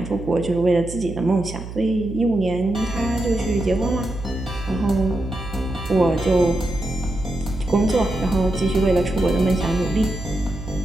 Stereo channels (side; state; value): right; noise; hum, 10 dB below the sound